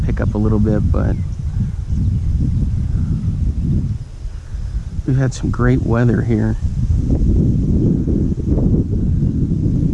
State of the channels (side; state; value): both; identical; correlation 1.00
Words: up a little bit, but we've had some great weather here.